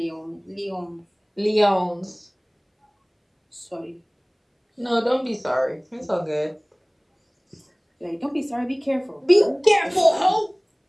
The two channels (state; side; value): identical; both; correlation 1.00